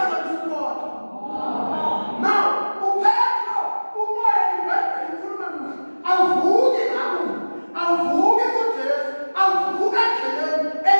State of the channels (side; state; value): both; inverted; correlation -1.00